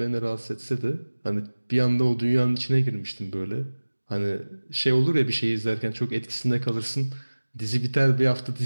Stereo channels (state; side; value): inverted; both; correlation -1.00